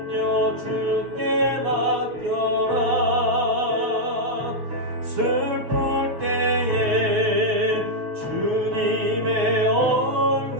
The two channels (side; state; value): left; late; 6.9 ms